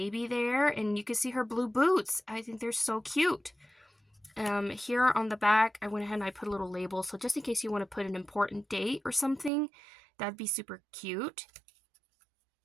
there. And you can see her blue boots. I think they're so cute. Here on the back, I went ahead and I put a little label. So just in case you want to put an important date or something, that'd be super cute.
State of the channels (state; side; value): drops out; left; at 9.5 s